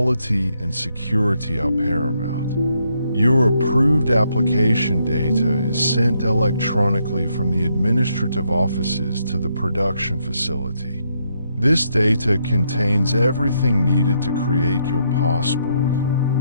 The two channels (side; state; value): both; inverted; correlation -0.76